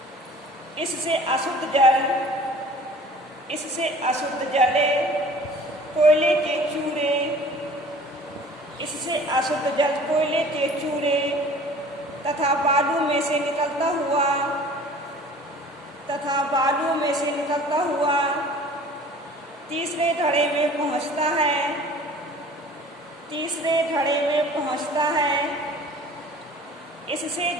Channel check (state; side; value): normal; both; correlation 0.47